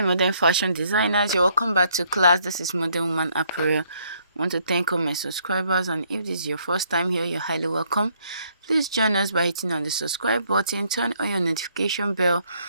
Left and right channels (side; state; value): both; inverted; correlation -0.68